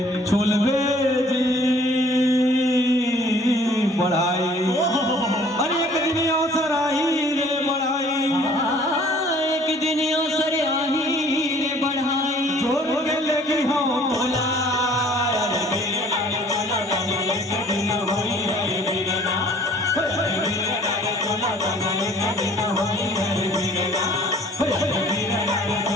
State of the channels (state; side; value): normal; both; correlation 0.54